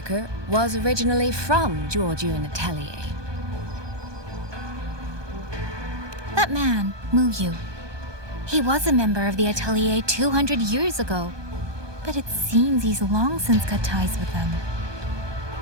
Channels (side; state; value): left; late; 1.2 ms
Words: was originally from Jiujiun Atelier. That man, Mu Yu. He was a member of the Atelier 200 years ago, but it seems he's long since cut ties with them.